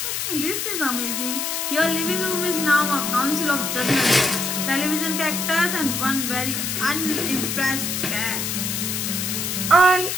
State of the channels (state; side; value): noise; left; hiss, 2 dB below the sound